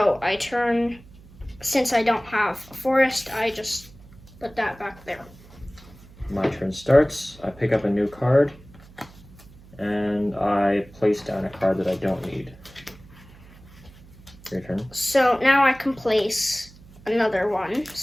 I turn, since I don't have a forest, I just put that back there. My turn starts. I pick up a new card, and I place down a card that I don't need. Your turn. So now I can place another one.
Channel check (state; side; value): noise; right; hum, 22 dB below the sound